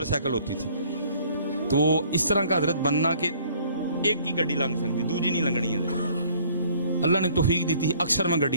سائیکل ہوتی تھی, تو اس طرح کا حضرت بننا کہ ایک کی گڈی لنگ سکتی, دوجی نہیں لنگنی ہے. اللہ نے توفیق دی تھی, اکثر میں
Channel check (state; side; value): inverted; both; correlation -0.58